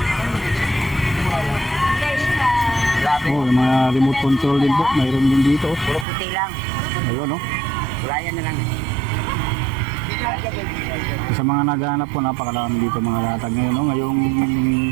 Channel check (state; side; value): drops out; left; at 6.1 s